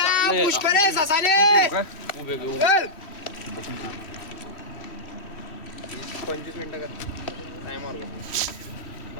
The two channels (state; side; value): late; right; 3.1 ms